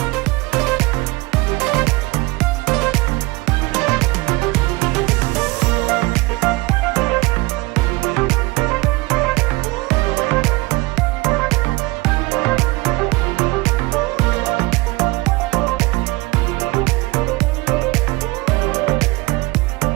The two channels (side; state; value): left; quieter; 23.0 dB